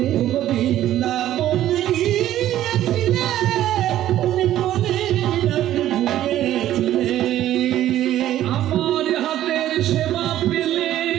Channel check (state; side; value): quieter; left; 12.8 dB